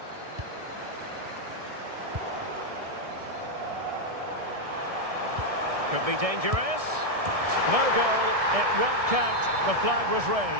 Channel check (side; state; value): left; late; 1.6 ms